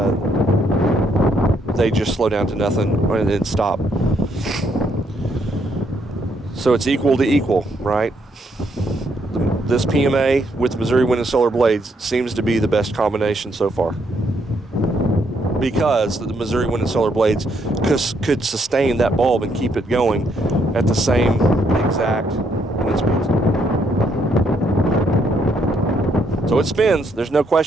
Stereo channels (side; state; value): both; normal; correlation 0.73